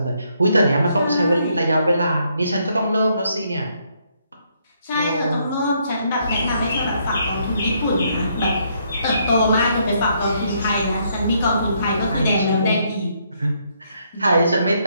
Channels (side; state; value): both; inverted; correlation -0.72